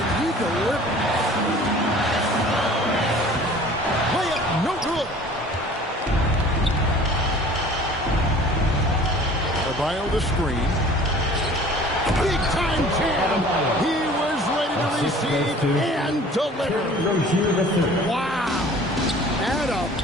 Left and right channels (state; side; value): normal; both; correlation 0.48